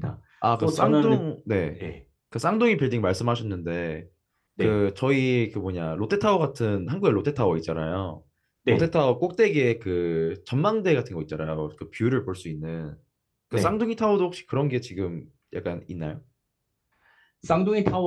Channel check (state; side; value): identical; both; correlation 1.00